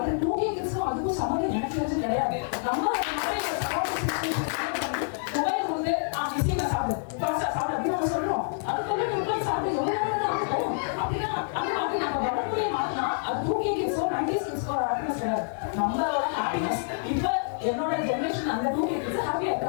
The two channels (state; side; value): silent; right; digital silence